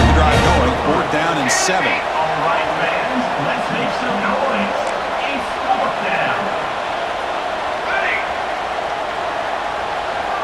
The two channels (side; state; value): both; identical; correlation 1.00